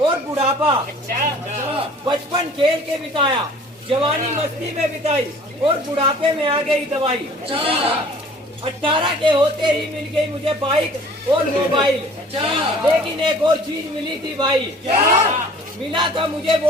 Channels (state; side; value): normal; both; correlation 0.50